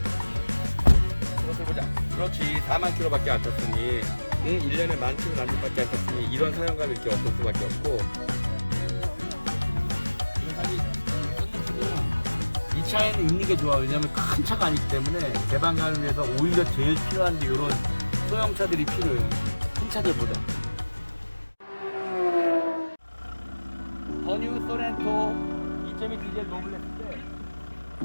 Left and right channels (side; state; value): both; inverted; correlation -1.00